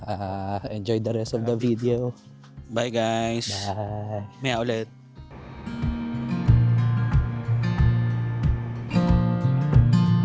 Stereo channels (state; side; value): identical; both; correlation 1.00